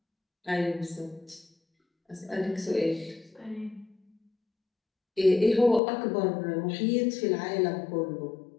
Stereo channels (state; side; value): drops out; right; at 5.8 s